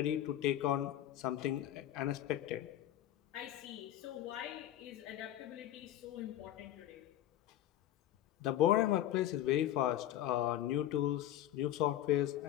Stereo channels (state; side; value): quieter; right; 12.7 dB